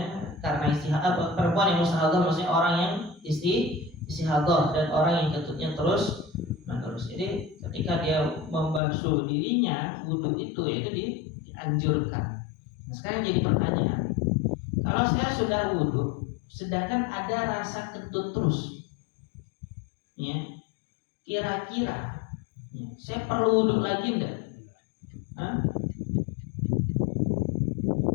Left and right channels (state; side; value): drops out; right; at 8.8 s